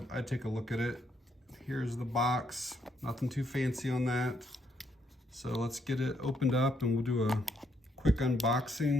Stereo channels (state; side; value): normal; both; correlation 0.75